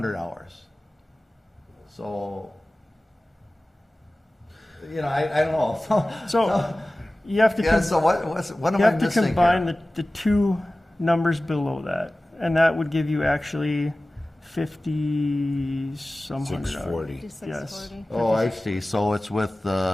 hours. So, I don't know. So you have to. Yeah, so what am You I have to missing combine here? the 2 numbers below that, and that would give you actually 50-some hundred. 640. 5640. Oh, I see. So it's with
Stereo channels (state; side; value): normal; both; correlation 0.97